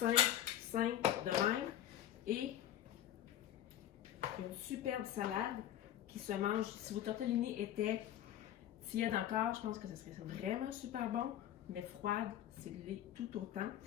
de même. Et une superbe salade qui se mange. Si vos tortellini étaient tièdes encore, je pense que ce serait vraiment super bon. Mais froide, c'est tout autant.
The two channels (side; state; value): right; quieter; 11.9 dB